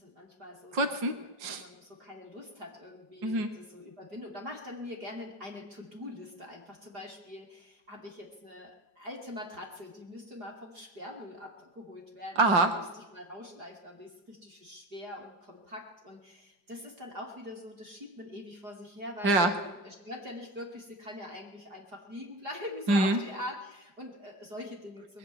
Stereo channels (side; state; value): left; late; 4.9 ms